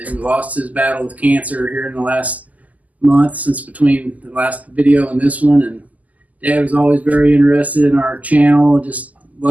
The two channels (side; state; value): left; late; 0.077 ms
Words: lost his battle with cancer here in the last month, since between the last video and this one. And Dad was always very interested in our channel, just